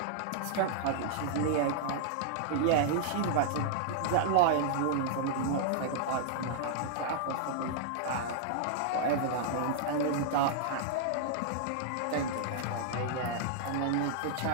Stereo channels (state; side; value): different; both; correlation -0.01